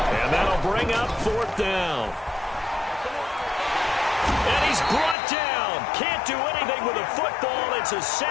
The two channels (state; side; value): drops out; right; at 5.2 s